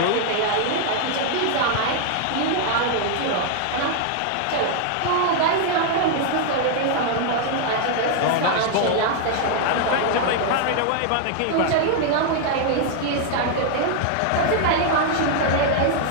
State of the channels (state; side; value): different; both; correlation 0.00